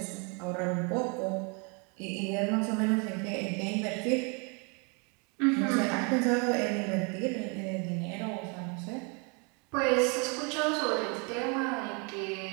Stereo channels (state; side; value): quieter; left; 33.6 dB